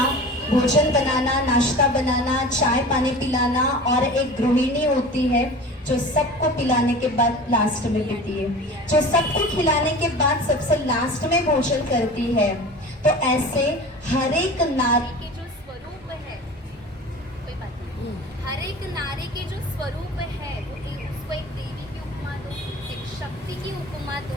भोजन बनाना, नाश्ता बनाना, चाय पानी पिलाना, और एक गृहिणी होती है जो सबको पिलाने के बाद लास्ट में पीती है, जो सबको खिलाने के बाद सबसे लास्ट में भोजन करती है। तो ऐसे हर एक नारी के जो स्वरूप है, कोई बात नहीं, हर एक नारी के जो स्वरूप है उसको एक देवी की उपमा दो, एक शक्ति की उपमा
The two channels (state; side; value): normal; both; correlation 0.37